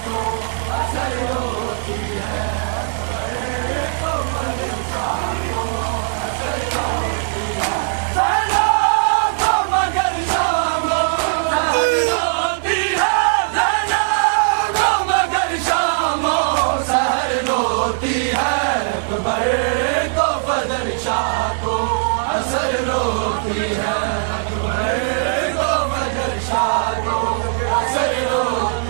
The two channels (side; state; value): left; silent; 64 dB below the other